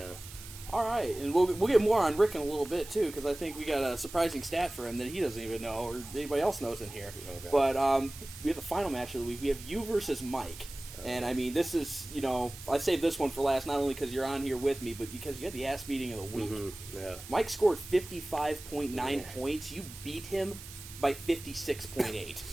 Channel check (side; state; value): right; noise; hiss, 15 dB below the sound